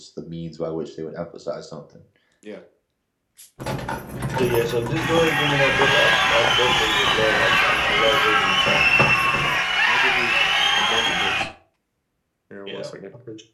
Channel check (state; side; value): identical; both; correlation 1.00